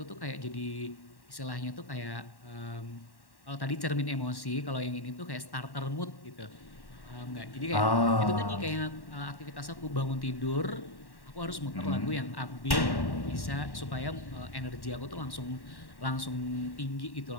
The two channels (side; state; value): right; late; 1.1 ms